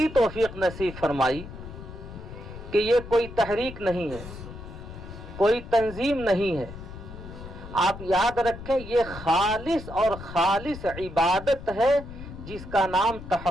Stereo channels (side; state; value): left; noise; rumble, 12 dB below the sound